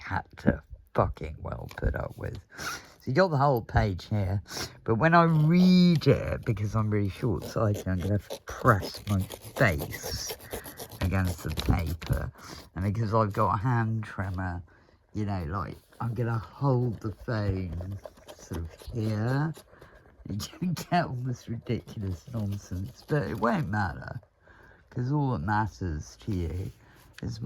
to fucking well put up with. So you got the whole page here, but when I read it, because I'm really short-sighted, I'm going to have to press my face against the paper, and because I've got a hand tremor, you know, like, I'm going to hold the phone sort of here, and you get all this ridiculous nonsense, but it won't matter, because all that matters to you is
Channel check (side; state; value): both; identical; correlation 1.00